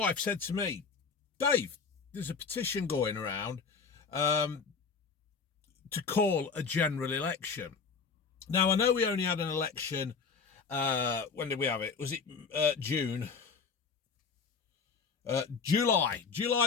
said to me, Dave, there's a petition going around to call a general election. Now, I know we only had an election, when did we have it? Was it June? July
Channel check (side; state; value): right; quieter; 5.3 dB